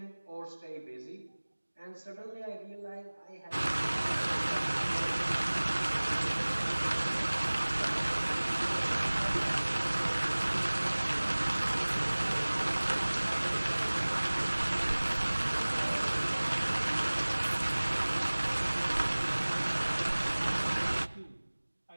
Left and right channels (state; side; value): inverted; both; correlation -1.00